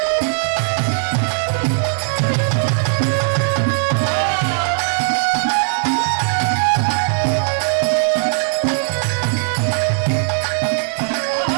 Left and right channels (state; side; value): silent; left; digital silence